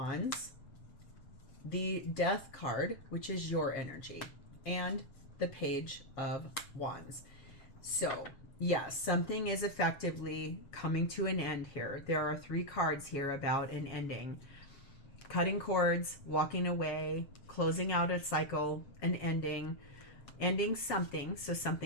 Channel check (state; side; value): late; right; 7.3 ms